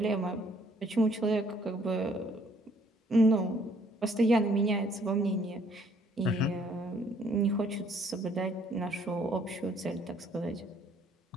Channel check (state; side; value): normal; both; correlation 0.63